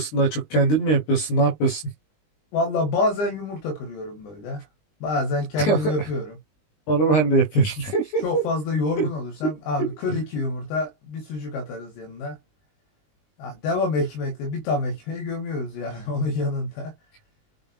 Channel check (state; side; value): late; right; 20 ms